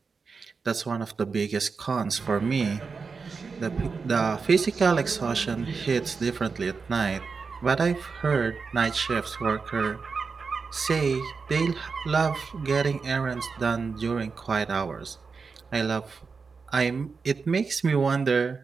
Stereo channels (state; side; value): quieter; left; 4.9 dB